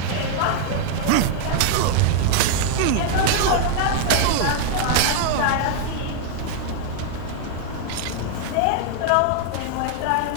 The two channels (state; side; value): different; both; correlation 0.00